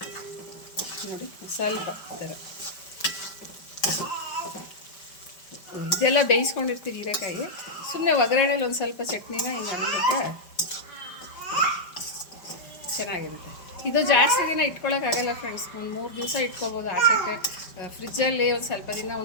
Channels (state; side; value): late; right; 5.2 ms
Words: ನೋಡಿ ಸ್ವಲ್ಪ ಈ ಥರ ಇದೆಲ್ಲ ಬೇಯಿಸ್ಕೊಂಡಿರ್ತೀವಿ ಹೀರೆಕಾಯಿ. ಸುಮ್ಮನೆ ಒಗ್ಗರಣೆಲಿ ಒಂದು ಸ್ವಲ್ಪ ಚಟ್ನಿನ ಹಿಂಗೆ ಅಂದ್ಬಿಟ್ರೆ ಚೆನ್ನಾಗಿರುತ್ತೆ. ಇದು ಜಾಸ್ತಿ ದಿನ ಇಟ್ಕೊಳ್ಳೋಕ್ಕಾಗಲ್ಲ ಫ್ರೆಂಡ್ಸ್. ಒಂದು 3 ದಿವಸ ಇಟ್ಕೊಬೋದು ಆಚೆಗೆ. ಫ್ರಿಜ್ಜಲ್ಲಿ ಒಂದು ಸ್ವಲ್ಪ ದಿನ,